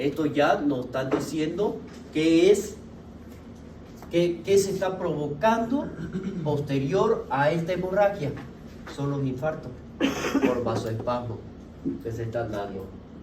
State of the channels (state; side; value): identical; both; correlation 1.00